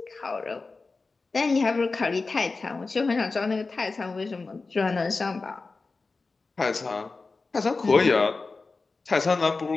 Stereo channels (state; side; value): quieter; right; 3.9 dB